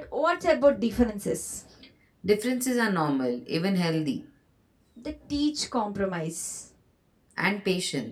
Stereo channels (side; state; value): both; identical; correlation 1.00